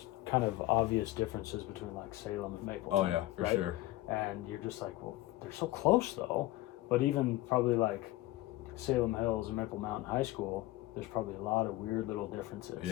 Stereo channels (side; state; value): right; quieter; 17.4 dB